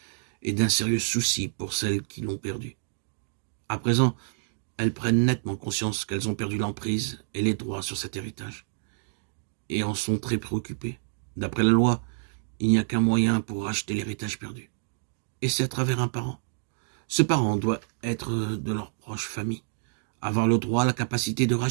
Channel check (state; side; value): silent; left; digital silence